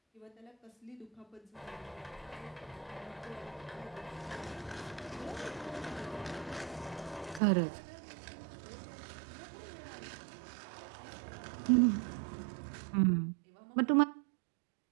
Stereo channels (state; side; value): drops out; left; at 7.4 s